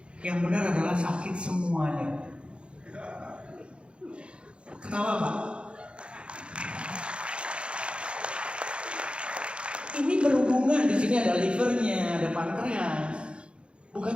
Yang benar adalah sakit semuanya. Ketawa Pak? Ini berhubungan, di sini ada livernya, ada pankreas, bukan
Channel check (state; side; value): late; left; 0.057 ms